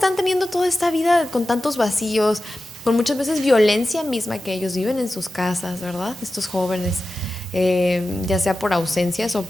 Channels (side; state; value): both; normal; correlation 0.94